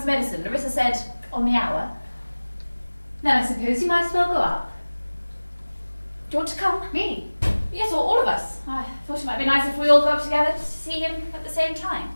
medicine. Larissa said on the hour. Then I suppose you might as well go up. Do you want to come? Me? Yes, or all of us. I thought it might be nice if we all go up together to see him at the same time.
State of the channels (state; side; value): inverted; both; correlation -1.00